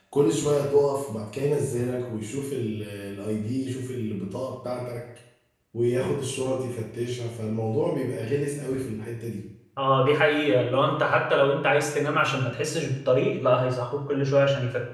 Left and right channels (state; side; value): identical; both; correlation 1.00